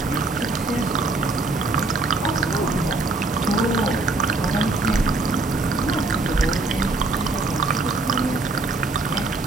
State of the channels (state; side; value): quieter; left; 3.3 dB